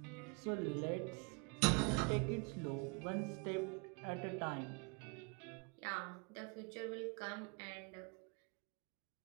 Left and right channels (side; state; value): left; quieter; 32.6 dB